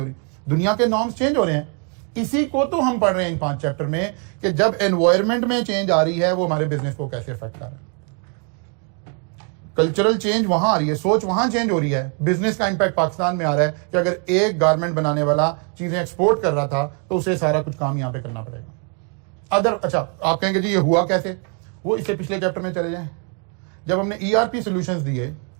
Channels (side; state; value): left; quieter; 39.2 dB